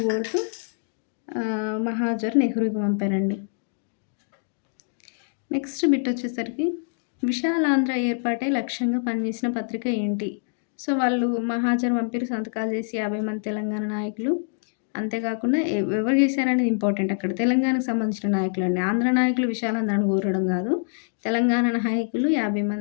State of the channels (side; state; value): right; silent; digital silence